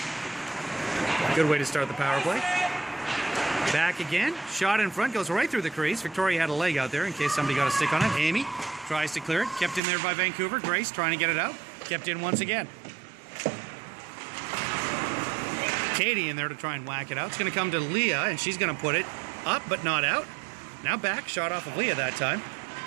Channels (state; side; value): drops out; left; at 9.8 s